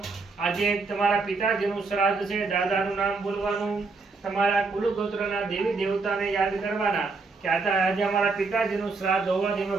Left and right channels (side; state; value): left; quieter; 4.1 dB